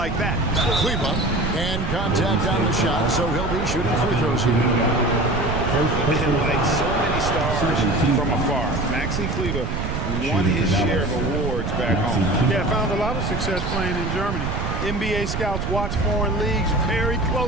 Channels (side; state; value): right; noise; rumble, 3 dB below the sound